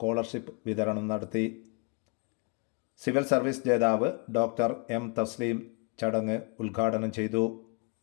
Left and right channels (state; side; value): quieter; right; 34.2 dB